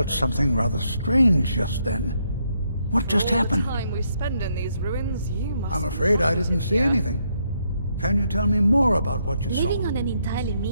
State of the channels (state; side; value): inverted; both; correlation -0.76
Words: something rather strange just then. What just happened? All the time we spend in these ruins, you must. I'm afraid I didn't see anything. Can you tell me more about what you saw? Living on an entirely